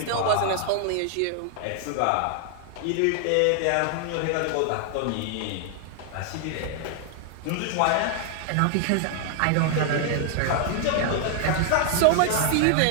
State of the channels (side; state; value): both; different; correlation 0.00